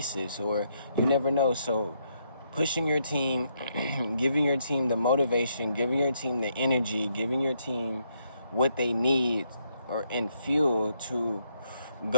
or you never know. So pushing your team, giving your team the motivation, giving your team the energy, giving your team what they need and fuel to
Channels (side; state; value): both; inverted; correlation -0.76